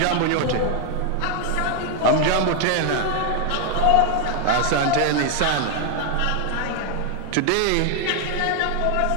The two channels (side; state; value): both; different; correlation 0.00